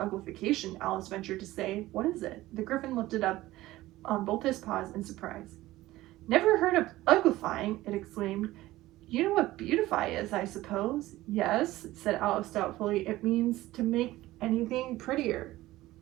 Alice ventured to say. "What is it?" The Griffin lifted up on both his paws in surprise. "Never heard of uglifying!" it exclaimed. "You know what beautify is, I suppose?" "Yes," said Alice doubtfully. "It means to make anything prettier."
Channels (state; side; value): quieter; left; 16.9 dB